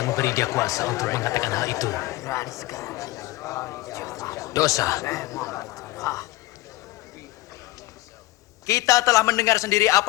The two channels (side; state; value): right; quieter; 18.0 dB